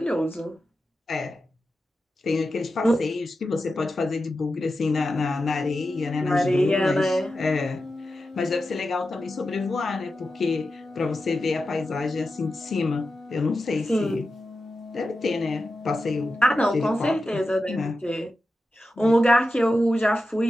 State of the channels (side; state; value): both; normal; correlation 0.91